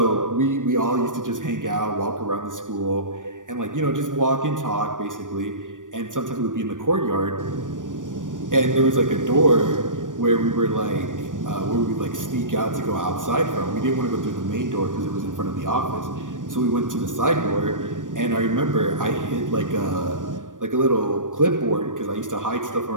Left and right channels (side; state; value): left; late; 0.88 ms